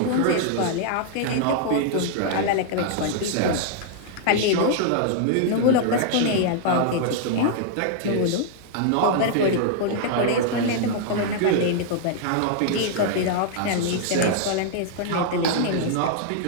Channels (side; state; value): both; different; correlation -0.01